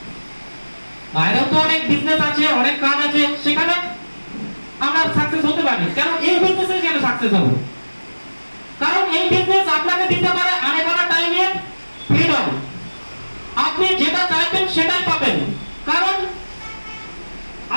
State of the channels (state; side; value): inverted; both; correlation -1.00